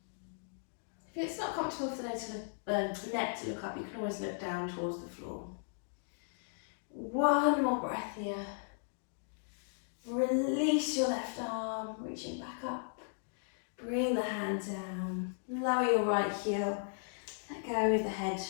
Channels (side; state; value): right; silent; digital silence